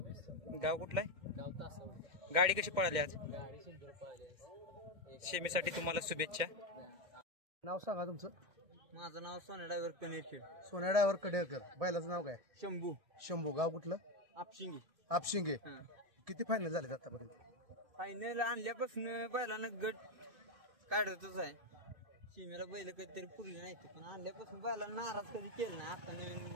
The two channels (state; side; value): late; left; 2.1 ms